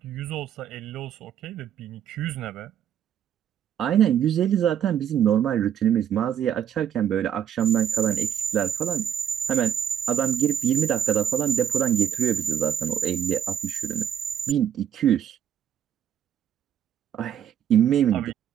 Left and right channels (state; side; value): quieter; left; 9.5 dB